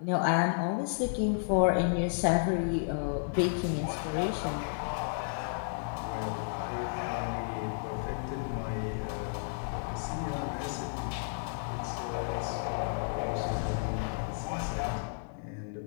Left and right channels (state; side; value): silent; right; digital silence